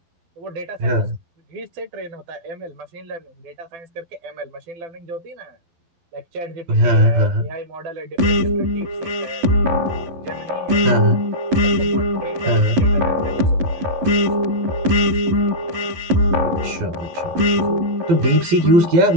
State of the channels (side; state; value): left; late; 12 ms